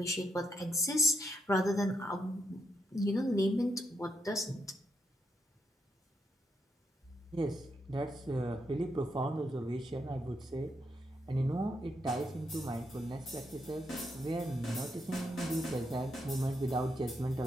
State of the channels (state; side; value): normal; both; correlation 0.79